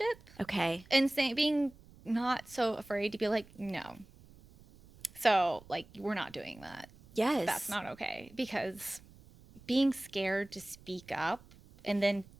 Okay. And being not so afraid to be like, no. So, like, we're not doing that. Yes. That's not okay. Because being scared to speak up and then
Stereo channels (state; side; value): noise; right; rumble, 23 dB below the sound